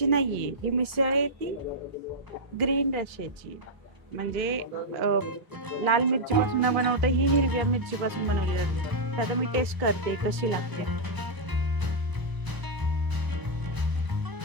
नाहीये, ही मिसळ आहे ती ग्रीन रश्श्याची. म्हणजे लाल मिरची पासून न बनवता ही हिरव्या मिरची पासून बनवली जाते. तर आता मी टेस्ट करते कशी लागते.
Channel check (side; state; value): left; late; 1.0 ms